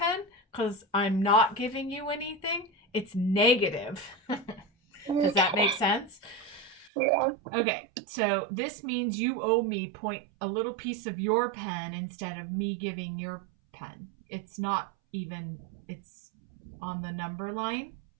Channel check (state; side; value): drops out; left; at 6.9 s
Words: because I'm not giving you anything. It's negative. Does that make sense? Yeah. Okay, so this means you owe me a little piece of your pen instead of me giving your pen. It's not even, it's on the number line.